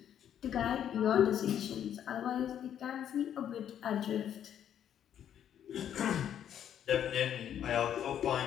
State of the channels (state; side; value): quieter; right; 9.8 dB